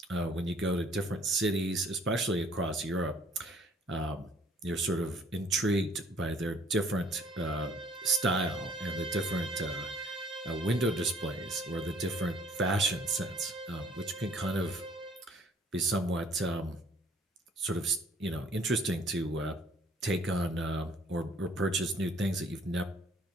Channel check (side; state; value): both; normal; correlation 0.58